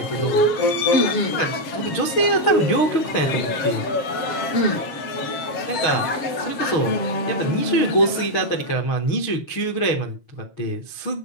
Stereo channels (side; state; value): right; late; 6.4 ms